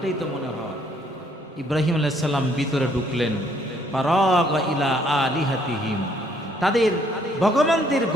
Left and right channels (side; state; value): both; normal; correlation 0.66